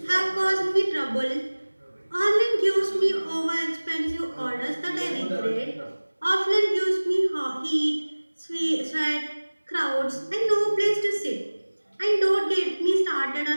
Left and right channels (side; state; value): both; inverted; correlation -1.00